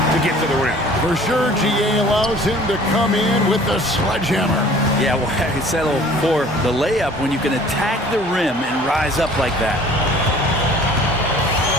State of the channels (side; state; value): both; normal; correlation 0.50